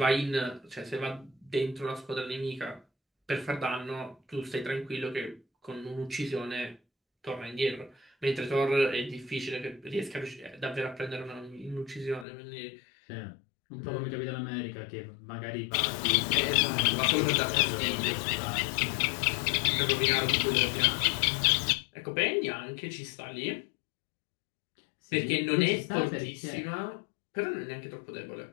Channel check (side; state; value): right; drops out; at 12.2 s